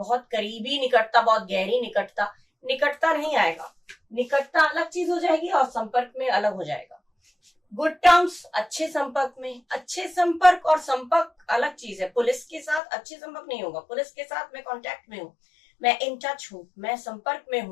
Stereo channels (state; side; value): drops out; right; at 12.8 s